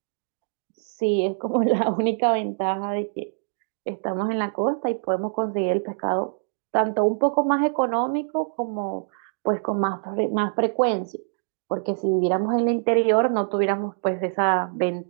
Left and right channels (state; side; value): silent; left; digital silence